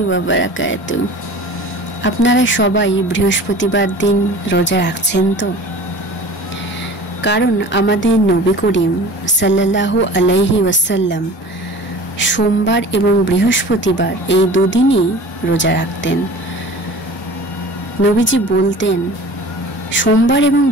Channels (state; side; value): normal; both; correlation 0.41